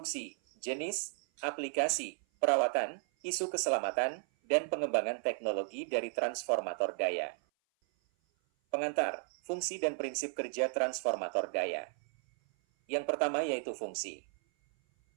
jenis, aplikasi, perawatan, isu keselamatan, dan pengembangan teknologi dari transformator daya. Pengantar, fungsi dan prinsip kerja transformator daya. Yang pertama yaitu fungsi.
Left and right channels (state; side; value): silent; left; 55 dB below the other